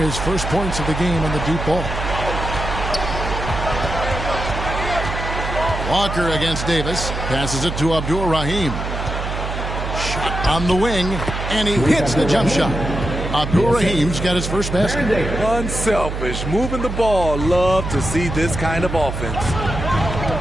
first points of the game on the deep ball. Walker against Davis. Passes it to Abdul-Rahim. Shot on the wing. And he hits the jump shot. Abdul-Rahim's got his first basket. Unselfish. Moving the ball. Love to see this kind of offense.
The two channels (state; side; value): noise; right; hum, 5 dB below the sound